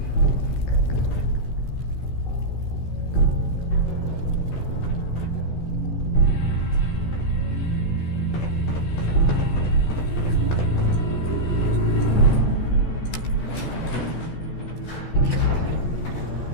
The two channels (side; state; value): right; late; 14 ms